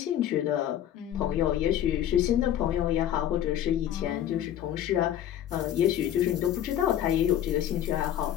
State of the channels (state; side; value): quieter; right; 11.1 dB